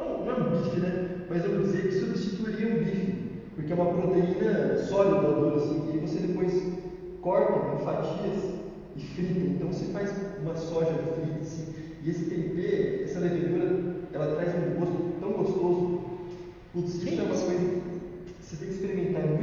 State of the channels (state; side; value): identical; both; correlation 1.00